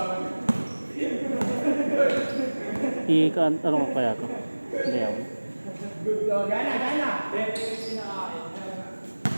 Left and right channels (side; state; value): both; inverted; correlation -1.00